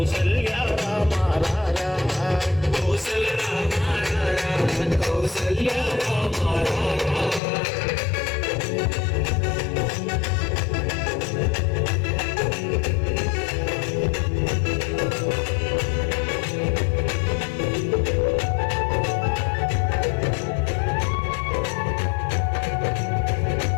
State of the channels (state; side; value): drops out; right; at 7.4 s